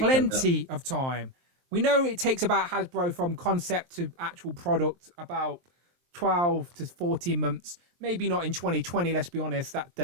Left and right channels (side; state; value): left; late; 23 ms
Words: comes out. plenty of time. We know it takes about Hasbro from concept to actual product about 12 to 14 months. Maybe not in 2020. Let's be honest, that